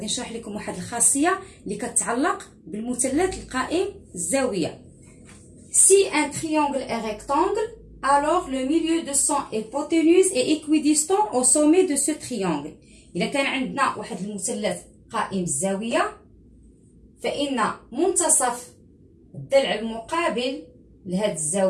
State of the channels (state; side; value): identical; both; correlation 1.00